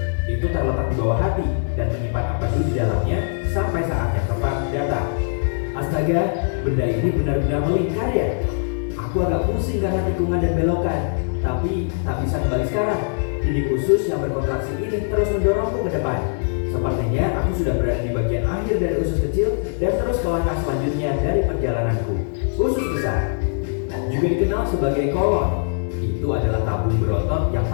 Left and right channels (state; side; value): silent; right; digital silence